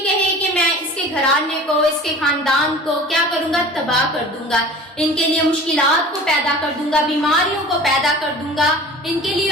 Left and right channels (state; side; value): normal; both; correlation 0.41